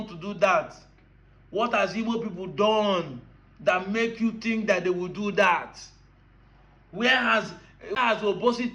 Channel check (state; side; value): identical; both; correlation 1.00